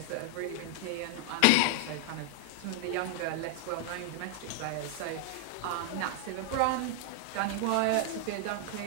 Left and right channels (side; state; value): both; different; correlation 0.00